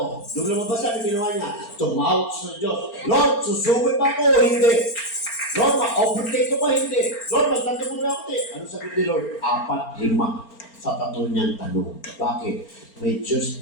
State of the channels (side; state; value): right; late; 4.4 ms